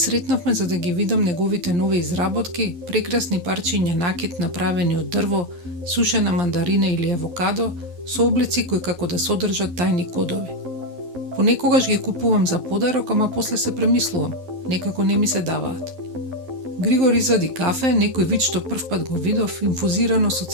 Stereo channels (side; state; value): left; late; 11 ms